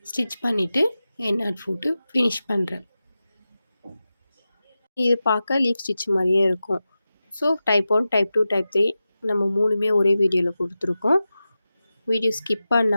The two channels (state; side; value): inverted; both; correlation -0.93